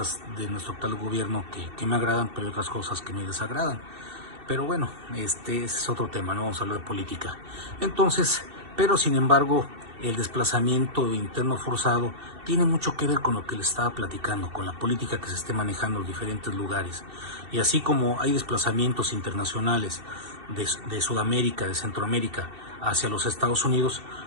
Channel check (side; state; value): left; late; 2.7 ms